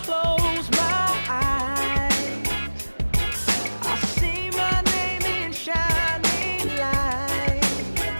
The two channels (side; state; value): both; inverted; correlation -1.00